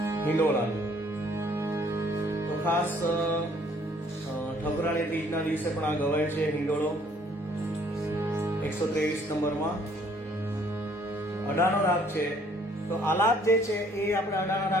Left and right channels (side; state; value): both; normal; correlation 0.62